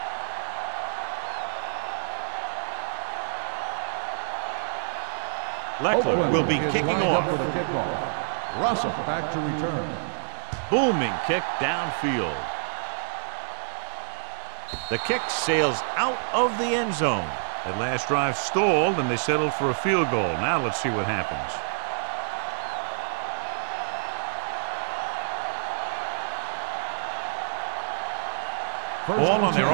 Leckler will be kicking off. For the kickoff. Russell back to return. Booming kick downfield. The kick sails out of the end zone. That last drive stalled, and they settled for a field goal. Now let's see what happens. Ball on their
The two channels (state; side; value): silent; left; digital silence